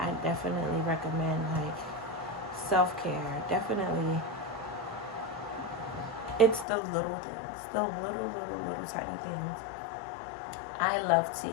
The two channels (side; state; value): right; drops out; at 6.7 s